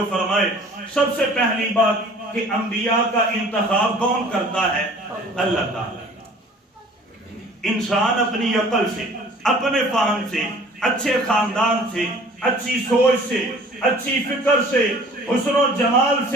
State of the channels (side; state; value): both; normal; correlation 0.50